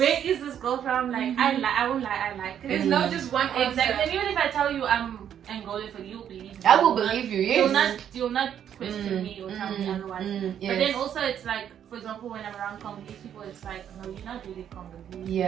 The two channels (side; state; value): left; quieter; 9.4 dB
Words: is this girl from? Like, I won't lie, I like it. There's not just one Exactly. answer. And even if I tell you I'm Angolan, for you, believe me. I will believe you, yes. You'll not question me or tell me otherwise. Yes. But then also, it's like, for example, when I'm around Congolese people, it's like, no, you're not really Congolese.